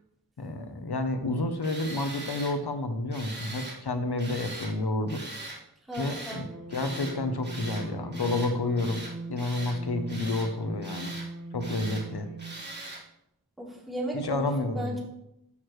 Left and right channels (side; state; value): both; normal; correlation 0.38